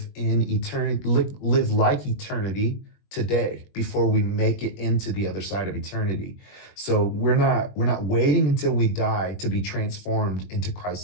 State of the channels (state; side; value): late; right; 21 ms